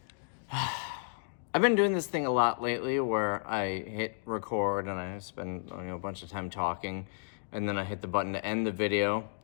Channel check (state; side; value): silent; right; digital silence